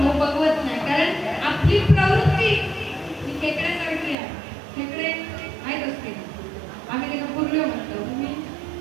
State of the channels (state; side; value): drops out; left; at 4.2 s